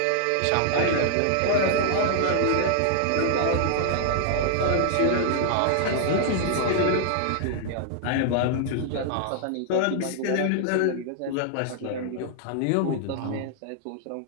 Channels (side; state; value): both; different; correlation 0.00